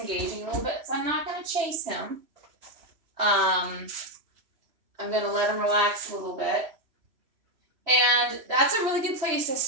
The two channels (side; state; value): left; late; 3.0 ms